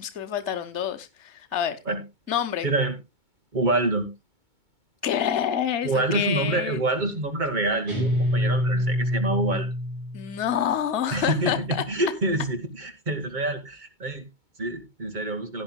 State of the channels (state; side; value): late; left; 2.2 ms